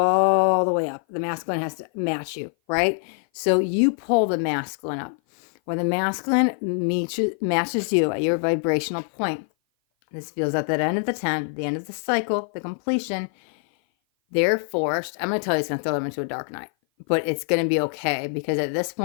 the way up. The masculine has to match you, right? So you pull the masculine up. When the masculine matches you at your vibrational point, this feels at that end of the 10, the end of the cycle, the completion, they're forced. I'm going to tell you it's going to throw them into a dark night, but it's going to be okay because at this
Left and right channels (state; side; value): silent; right; 57 dB below the other